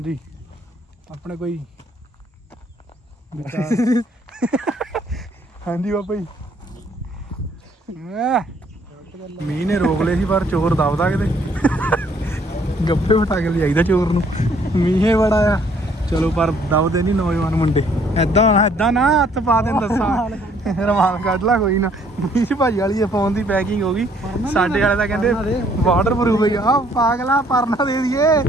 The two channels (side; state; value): both; normal; correlation 0.64